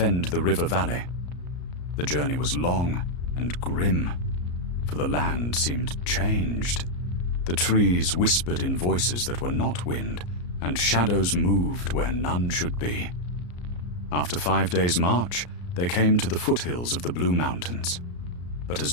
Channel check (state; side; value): late; right; 34 ms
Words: the river valley. The journey was long and grim, for the land seemed changed. The trees whispered in voices that were not wind, and shadows moved where none should be. After 5 days' march, they came to the foothills of the Blue Mountains. But as